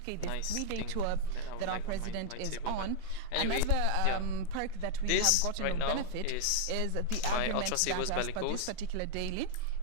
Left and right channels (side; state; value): both; different; correlation 0.00